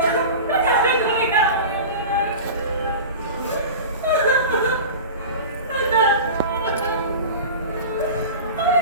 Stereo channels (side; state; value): both; inverted; correlation -0.32